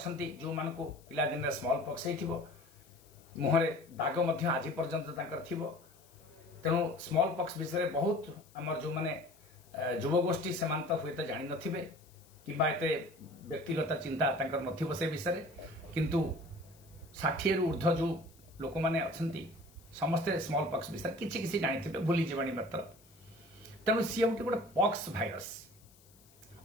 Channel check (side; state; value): left; noise; hiss, 27 dB below the sound